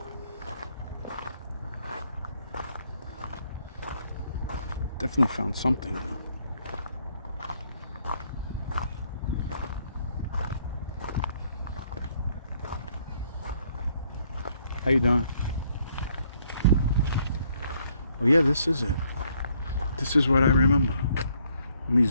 Definitely found something though. How you doing? Oh yeah, this is it. This is what I remember. Let me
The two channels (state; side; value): inverted; both; correlation -0.68